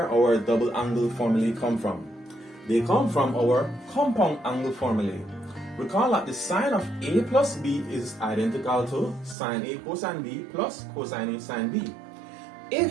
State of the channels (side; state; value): left; drops out; at 9.3 s